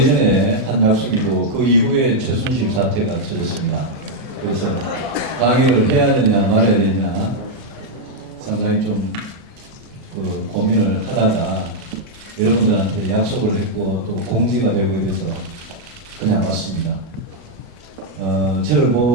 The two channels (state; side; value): normal; both; correlation -0.01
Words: 한 약속이고 그 이후에 최순실 사태가 터졌습니다. 그래서 강의를 해야 되냐 말아야 되냐 상당히 좀 고민을 하다가 여러분들한테 약속을 했고 또 공지가 되고 이래서 그냥 왔습니다. 저를